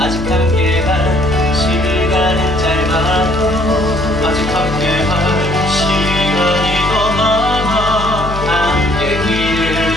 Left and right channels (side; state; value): left; noise; hum, 7 dB below the sound